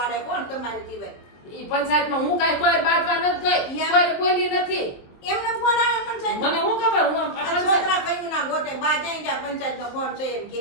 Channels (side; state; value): right; late; 23 ms